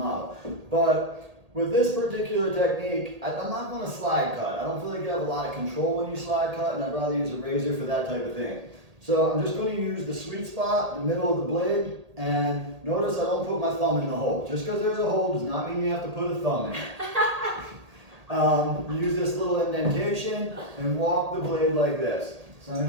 But with this particular technique, I'm not going to slide cut. I don't feel like you have a lot of control when you slide cut, and I'd rather use a razor for that type of thing. So I'm just going to use the sweet spot, the middle of the blade, and notice I don't put my thumb in the hole. Just because there's a hole does not mean you have to put a thumb in. Use this little indentation and walk the blade like this. So I'm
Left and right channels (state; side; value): late; left; 1.8 ms